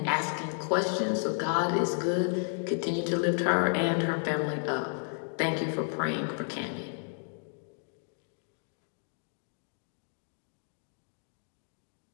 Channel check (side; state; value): right; silent; digital silence